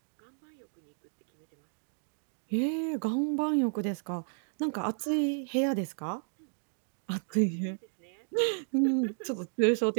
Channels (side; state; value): left; silent; 56 dB below the other